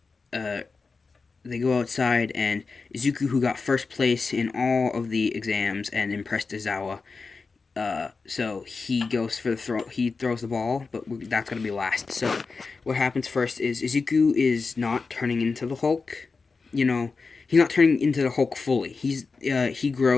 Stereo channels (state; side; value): quieter; right; 4.4 dB